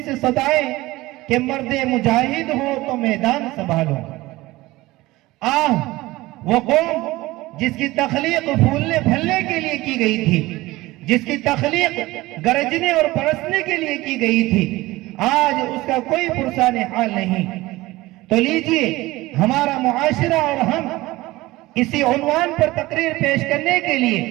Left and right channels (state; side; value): quieter; left; 19.1 dB